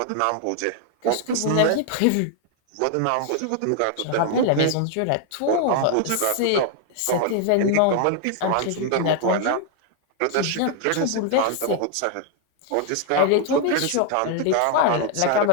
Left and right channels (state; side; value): different; both; correlation 0.00